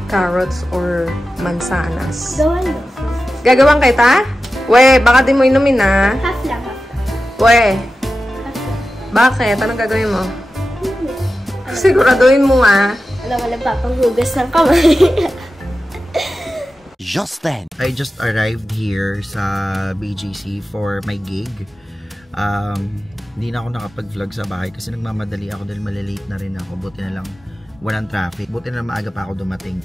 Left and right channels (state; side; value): normal; both; correlation 0.93